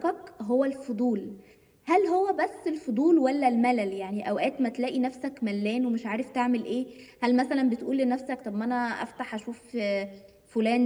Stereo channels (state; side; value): identical; both; correlation 1.00